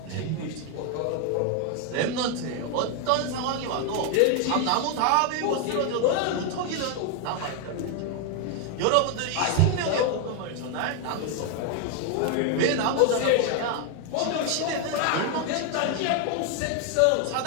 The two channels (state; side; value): different; both; correlation 0.01